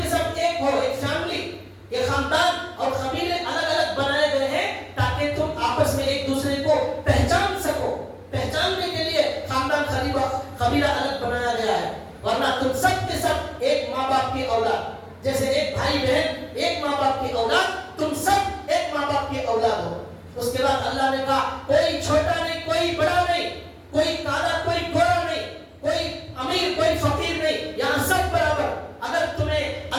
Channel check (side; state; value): both; identical; correlation 1.00